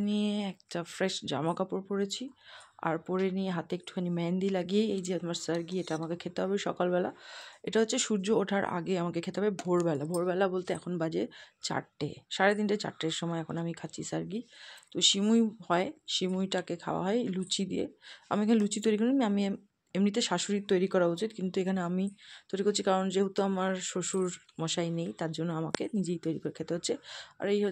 নিয়ে একটা ফ্রেশ জামা কাপড় পরেছি, আর পরে নিয়ে হাতে একটুখানি মেহেন্দি লাগিয়ে এই যে আমার সার্গি, এটা আমাকে খেতে হবে সকালবেলা। এটা হচ্ছে সূর্য ওঠার আগে আমাকে খেতে হবে, ভোরবেলা। ভোরবেলা বলতে এখন বাজে 4টে, 3:30 4টের সময় এখন আমি খাচ্ছি সার্গি। তো সিমুই হয়, সিমুইটাকে খাওয়া হয় লুচি দিয়ে। আমি এখানে লুচি তৈরি করি, আমি এমনিতে শাশুড়ির তৈরি করা উচিত, কিন্তু এখানে আমি তৈরি করছি, কারণ যেহেতু আমার শ্বশুর মশাই নেই, তার জন্য আমাকে নিজেই তৈরি করে খেতে হচ্ছে। আর এই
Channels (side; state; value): both; identical; correlation 1.00